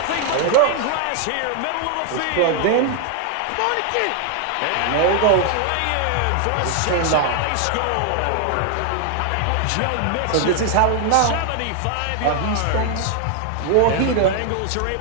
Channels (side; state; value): both; different; correlation 0.00